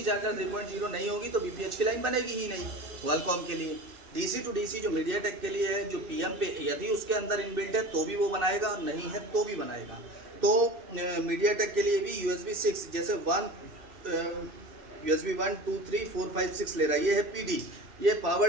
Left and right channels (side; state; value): left; late; 2.6 ms